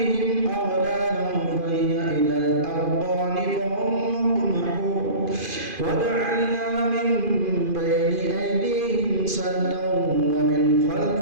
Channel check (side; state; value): left; late; 2.5 ms